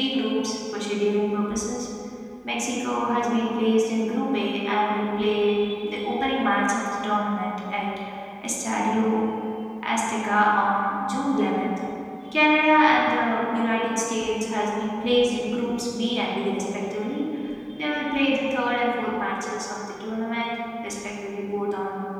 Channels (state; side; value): identical; both; correlation 1.00